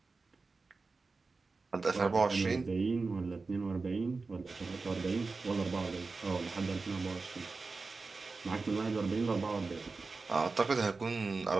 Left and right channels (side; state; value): left; quieter; 4.0 dB